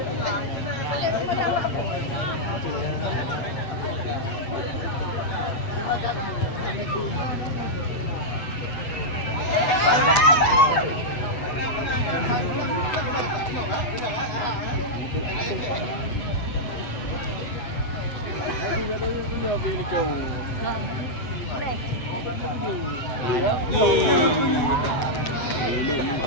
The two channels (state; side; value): late; right; 8.1 ms